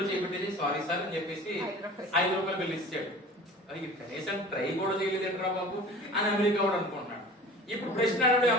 చేపెట్టేసి సారీ సార్ అని చెప్పేసి 5 రూపాయలు బిల్ ఇచ్చాడు. అది కనీసం ట్రై కూడా చేయలేదేంట్రా బాబు అని అమెరికా వాడు అనుకుంటున్నాడు. ఇప్పుడు ప్రశ్న అడిగాడు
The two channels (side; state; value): both; normal; correlation 0.41